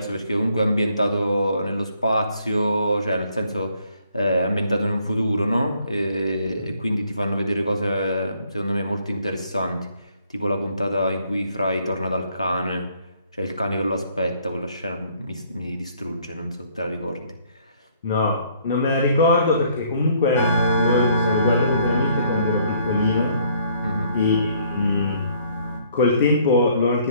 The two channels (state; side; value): inverted; both; correlation -0.64